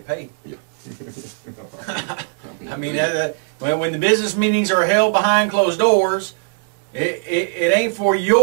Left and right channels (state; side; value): silent; left; 66 dB below the other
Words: paid. Yeah. I mean, when the business meetings are held behind closed doors, it ain't for